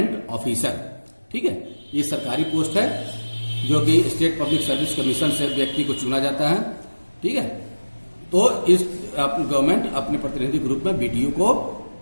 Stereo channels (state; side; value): inverted; both; correlation -1.00